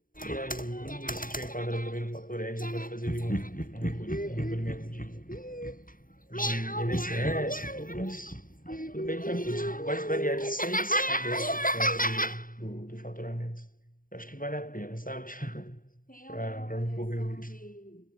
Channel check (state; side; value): late; right; 0.40 ms